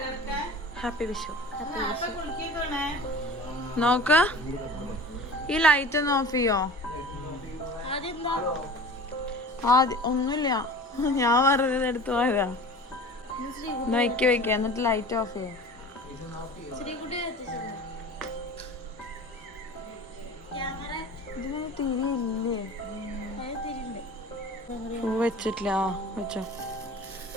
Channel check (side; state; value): both; normal; correlation 0.40